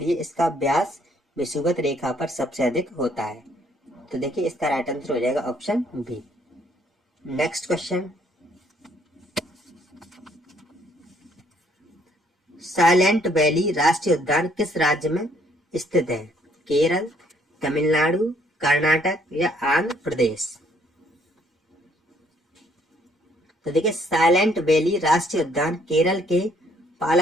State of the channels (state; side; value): normal; both; correlation 0.65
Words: इसका व्यास विषुवत रेखा पर सबसे अधिक होता है। तो देखिए इसका राइट आंसर हो जाएगा option B. Next question, Silent Valley राष्ट्रीय उद्यान किस राज्य में स्थित है? केरल, तमिलनाडु, कर्नाटक या आंध्र प्रदेश? तो देखिए साइलेंट वैली राष्ट्रीय उद्यान केरल के